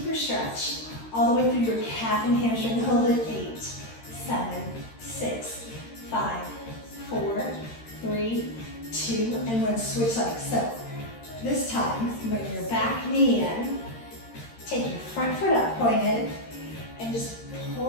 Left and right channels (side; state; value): right; late; 13 ms